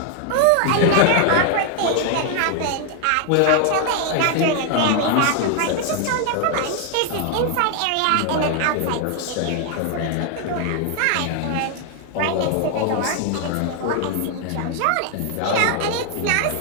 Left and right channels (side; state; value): both; different; correlation 0.00